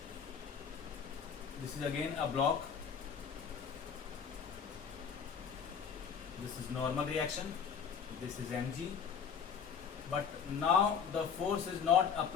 This is again a block. This is normal reaction. This is mg. But now the force is not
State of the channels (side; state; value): right; quieter; 7.0 dB